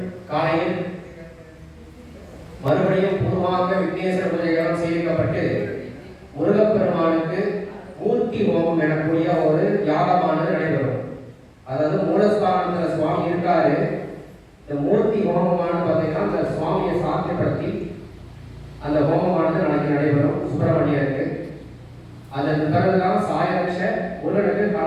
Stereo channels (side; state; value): both; identical; correlation 1.00